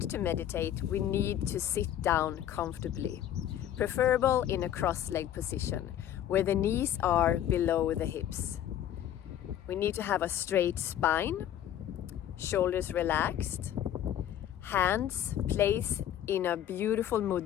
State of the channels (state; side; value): quieter; right; 11.1 dB